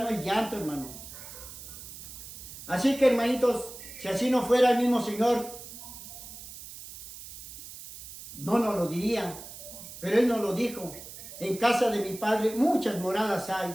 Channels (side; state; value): right; noise; hiss, 13 dB below the sound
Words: hay llanto, hermanos. Así que, hermanitos, si así no fuera el mismo Señor, no nos lo diría. Pero Él nos lo dijo. En casa de mi Padre muchas moradas hay.